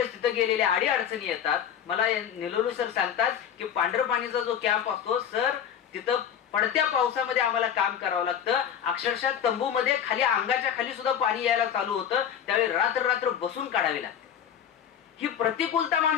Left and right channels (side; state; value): right; quieter; 9.0 dB